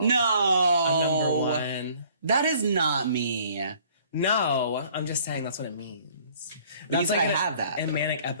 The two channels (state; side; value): inverted; both; correlation -0.56